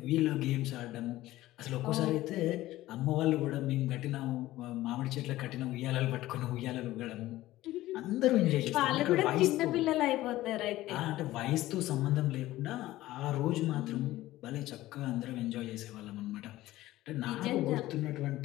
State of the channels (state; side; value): quieter; right; 16.2 dB